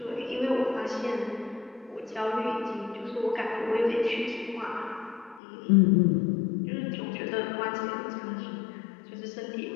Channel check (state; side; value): drops out; right; at 5.4 s